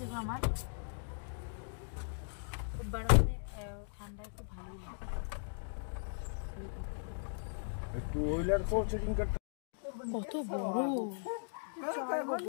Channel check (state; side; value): silent; right; digital silence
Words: গো আমার, খুব গরমে ঠান্ডায় খুব ভালোই লাগে। কত বড়,